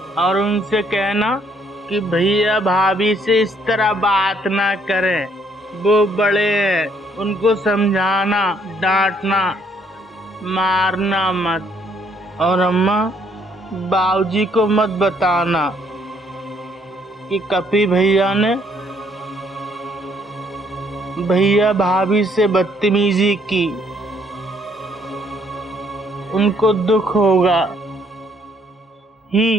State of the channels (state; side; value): normal; both; correlation 0.68